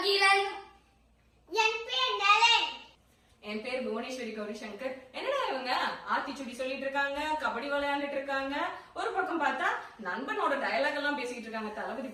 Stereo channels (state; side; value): identical; both; correlation 1.00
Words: என் பேர் நலன். என் பேர் புவனேஸ்வரி கௌரி சங்கர். என்னடா இவங்க ஆத்திச்சுடி சொல்லிட்டு இருக்காங்க, கபடி விளையாண்டுட்டு இருக்காங்க, ஒரு பக்கம் பார்த்தா நண்பனோட டயலாக் எல்லாம் பேசிட்டு இருக்காங்க தளபதி